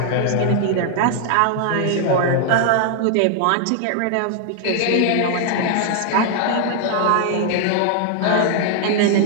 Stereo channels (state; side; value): different; both; correlation 0.00